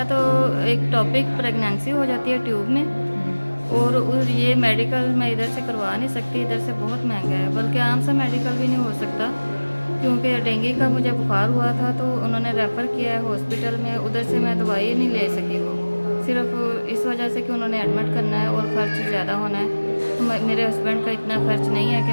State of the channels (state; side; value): inverted; both; correlation -1.00